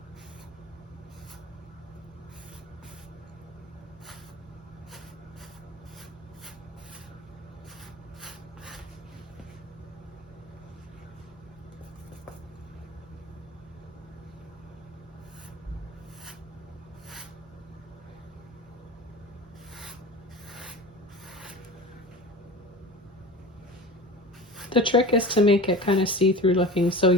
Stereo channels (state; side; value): normal; both; correlation 0.34